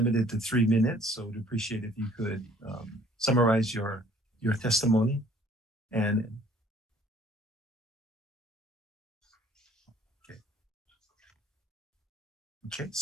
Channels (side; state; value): both; normal; correlation 0.57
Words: to 3 minutes, so we'd appreciate if you could summarize your testimony. And okay,